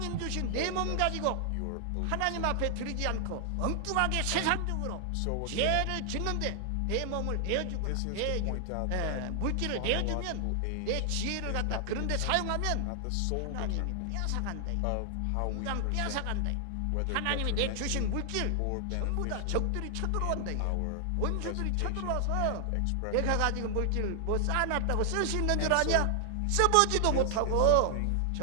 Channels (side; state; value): both; different; correlation 0.00